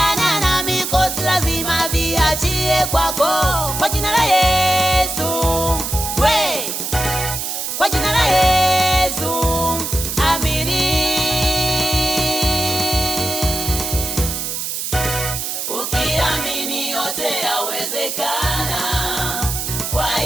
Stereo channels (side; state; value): right; noise; hiss, 3 dB below the sound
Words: na mikosi lazima viachie kwako, kwa jina la Yesu we, kwa jina la Yesu amini. Ukiamini yote yawezekana, kwa